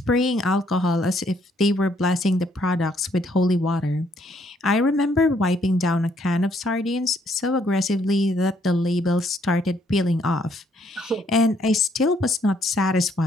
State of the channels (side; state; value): both; normal; correlation 0.69